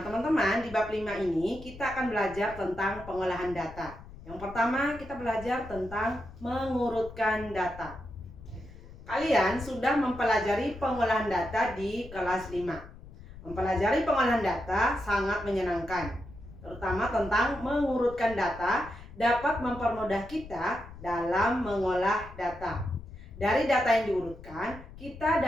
teman-teman, di bab 5 ini kita akan belajar tentang pengolahan data. Yang pertama, kita belajar tentang mengurutkan data. Kalian sudah mempelajari pengolahan data di kelas 5. Mempelajari pengolahan data sangat menyenangkan, terutama tentang mengurutkan data dapat mempermudah kita dalam mengolah data. Dari data yang diurutkan, kita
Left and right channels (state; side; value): noise; left; rumble, 16 dB below the sound